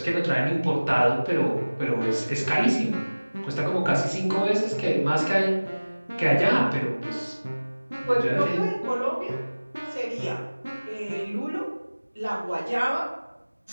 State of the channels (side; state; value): both; inverted; correlation -1.00